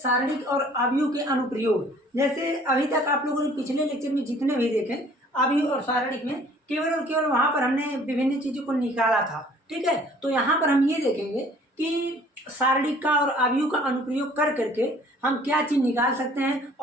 और अवयव के अनुप्रयोग। जैसे अभी तक आप लोगों ने पिछले लेक्चर में जितने भी देखे अवयव और सारणिक में केवल और केवल वहां पर हमने विभिन्न चीजों को निकाला था। ठीक है, तो यहाँ पर हम ये देखेंगे कि सारणिक का और अवयव का अनुप्रयोग कर करके हम क्या चीज निकाल सकते हैं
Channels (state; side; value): normal; both; correlation 0.54